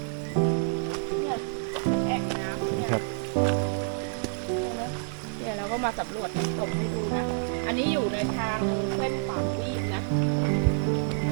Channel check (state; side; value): silent; left; 59 dB below the other